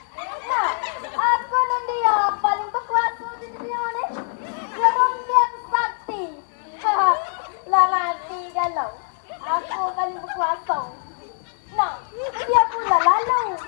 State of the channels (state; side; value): silent; right; 63 dB below the other